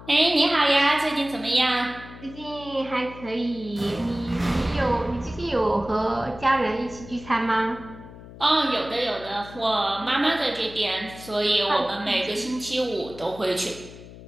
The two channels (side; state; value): left; noise; hum, 17 dB below the sound